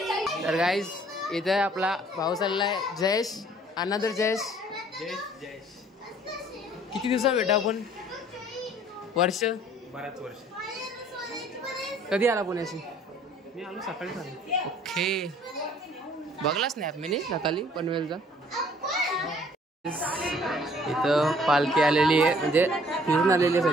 तर गाईज इथे आपला भाऊ चाललाय जयेश, अनदर जयेश. किती दिवसा भेटा आपण? वर्ष, बराच वर्ष. कधी आला पुण्याशी? मी आलो सकाळी झालं. ओके बघलाच नाही मी सकाळी पनवेलचा. इथं पालखी आलेली आहे, म्हणजे फिरून आलेली आहे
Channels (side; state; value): both; normal; correlation 0.57